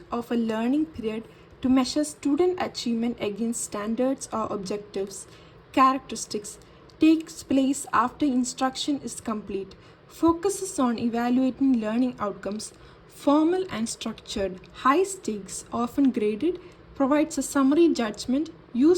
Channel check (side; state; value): both; identical; correlation 1.00